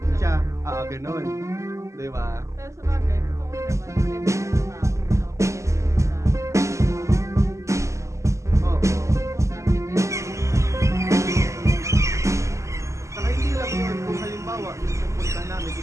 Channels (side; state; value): left; late; 0.14 ms